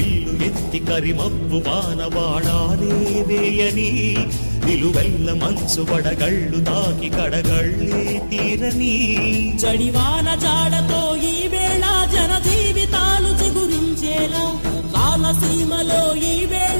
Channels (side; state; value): both; inverted; correlation -1.00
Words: ఎత్తి కరిమబ్బు బాణబాణాలే వేయని నిలువెల్ల మంచు వడగళ్ళు తాకి కడగళ్ళే తీరని జడివాన జాడతో ఈ వేళ జన జీవితాలు చిగురించేలా రామసీమలో ఈ